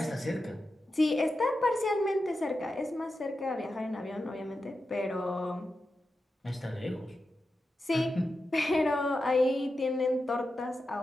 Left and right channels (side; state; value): both; normal; correlation 0.90